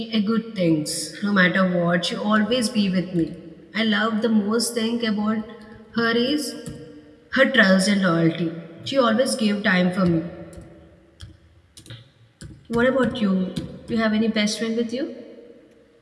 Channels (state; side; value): identical; both; correlation 1.00